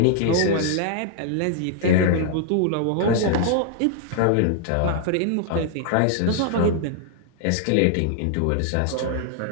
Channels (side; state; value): both; different; correlation -0.01